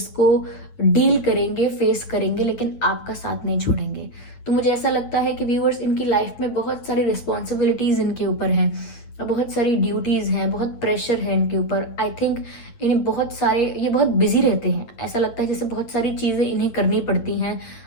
को डील करेंगे, फेस करेंगे, लेकिन आपका साथ नहीं छोड़ेंगे। तो मुझे ऐसा लगता है कि व्यूअर्स इनकी लाइफ में बहुत सारी रिस्पॉन्सिबिलिटीज़ इनके ऊपर हैं, बहुत सारी ड्यूटीज़ हैं, बहुत प्रेशर है इनके ऊपर। आई थिंक इन्हें ये बहुत बिजी रहते हैं, ऐसा लगता है जैसे बहुत सारी चीज़ें इन्हें करनी पड़ती हैं,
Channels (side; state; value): right; late; 9.0 ms